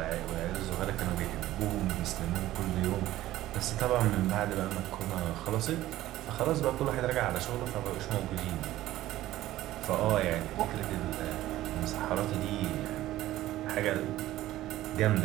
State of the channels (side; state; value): left; quieter; 15.1 dB